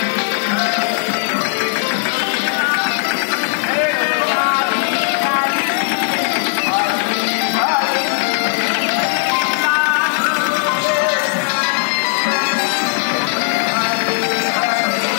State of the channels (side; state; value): right; silent; 68 dB below the other